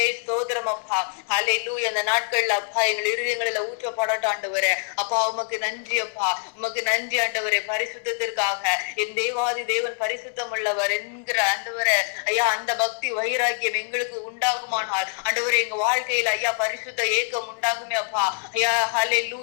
ஸ்தோத்திரம் அப்பா. ஹல்லேலூயா. அந்த நாட்கள்ல அப்பா எங்கள் இருதயங்களில ஊற்றப்படட்டும் ஆண்டவரே. அப்பா உமக்கு நன்றி அப்பா. உமக்கு நன்றி ஆண்டவரே பரிசுத்தத்திற்காக. என் தேவாதி தேவன் பரிசுத்தம் உள்ளவர் என்கிற ஆண்டவரே ஐயா அந்த பக்தி வைராக்கியம் எங்களுக்கு உண்டாகுமானால் ஆண்டவரே எங்க வாழ்க்கையில ஐயா பரிசுத்த ஏக்கம் உண்டாகுமே அப்பா. ஐயா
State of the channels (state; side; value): silent; right; 62 dB below the other